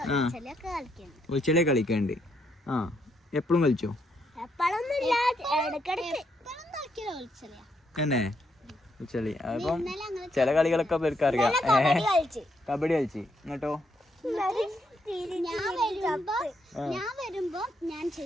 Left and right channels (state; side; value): normal; both; correlation 0.76